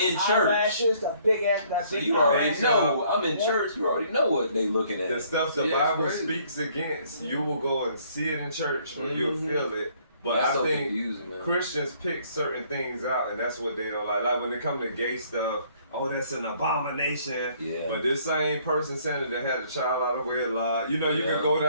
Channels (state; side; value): inverted; both; correlation -0.63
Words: church. Eyelashes, the big ass. That So big you already eyelash. know. I'm in Yeah. church. You already know what they looking at. The stuff the Yeah, it's Bible crazy. speaks against, you will go and see it in church or you'll feel it. But That's I so think confusing, man. Christians pick certain things out, and that's what they don't like. Like when it comes to gay stuff, oh, that's an abomination. Yeah. But this same person saying that they had a child out of wedlock, you know, you can go